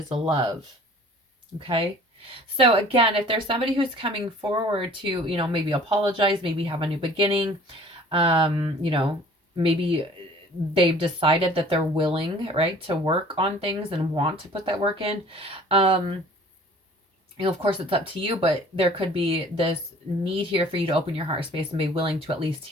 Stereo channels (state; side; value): normal; both; correlation 0.50